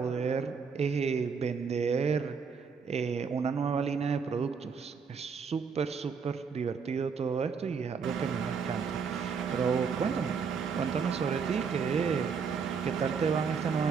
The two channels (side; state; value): left; quieter; 5.8 dB